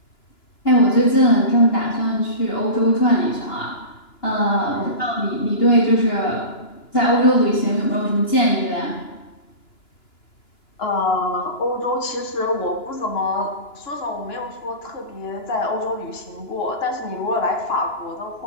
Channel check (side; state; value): right; late; 2.9 ms